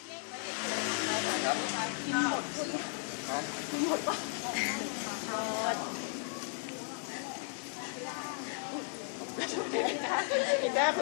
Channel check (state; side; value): silent; right; 54 dB below the other